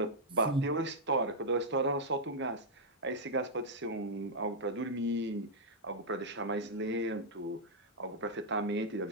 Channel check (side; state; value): both; normal; correlation -0.06